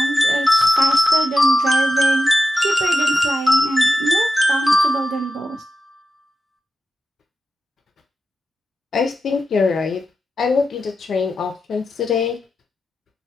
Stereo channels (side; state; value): both; normal; correlation 0.90